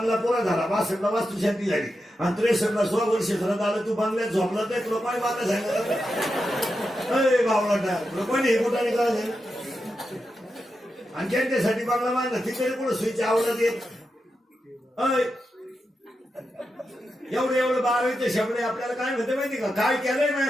पुरा झाला 62ला वास्तुशांती झाली आणि 63ला 16 वर्ष झालं आलं तू बंगल्यात झोपला तर लोकांनी मला सांगितलं बावळाटा लोकांनी हे कुठाने काय झालं आणि ज्यांच्यासाठी बंगला बांधला तिकडे कुठं सुईची आवडत येत एवढं 12वीचे शब्द आपल्याला काय म्हणते माहिती का काय केलंय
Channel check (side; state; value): both; normal; correlation 0.88